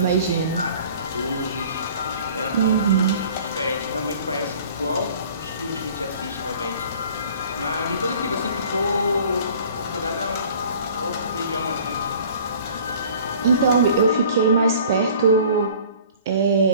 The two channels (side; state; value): both; inverted; correlation -0.49